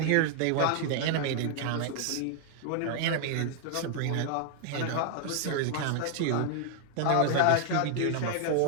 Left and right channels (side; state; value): both; different; correlation 0.00